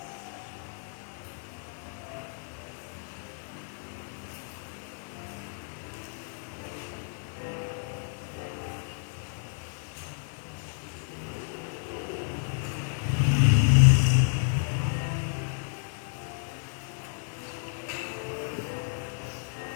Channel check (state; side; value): silent; right; 57 dB below the other